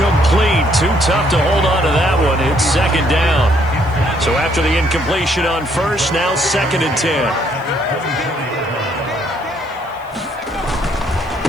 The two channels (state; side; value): noise; right; hiss, 29 dB below the sound